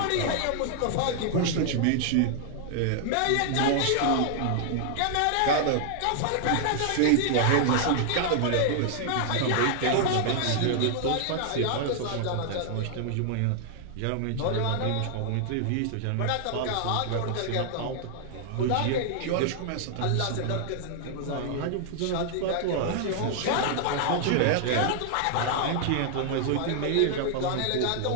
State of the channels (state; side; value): different; both; correlation 0.00